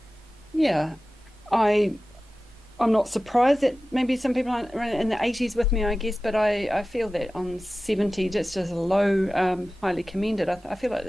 yeah, I'm not surprised that maybe some people aren't in the 80s with me, I guess, but I feel that on 70, just as a low, highly commended. I feel like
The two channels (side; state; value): both; normal; correlation 0.96